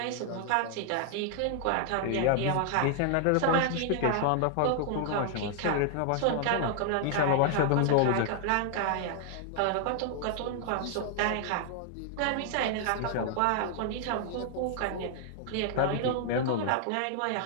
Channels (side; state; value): both; different; correlation -0.01